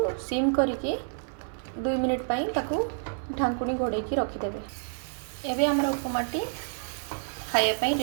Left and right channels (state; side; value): silent; left; digital silence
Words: सिम करके 2 मिनिट पाई ताकू ढांकुणी घोड़े रखिदेवे। एबे हमर उपमाटी खाया पाई